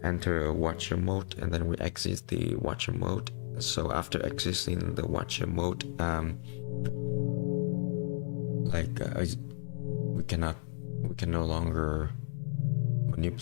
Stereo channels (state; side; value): silent; right; 56 dB below the other